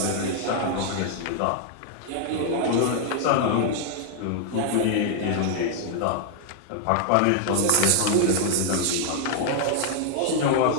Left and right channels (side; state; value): both; different; correlation 0.00